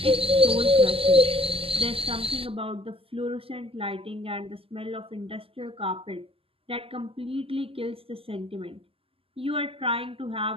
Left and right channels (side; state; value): left; late; 0.27 ms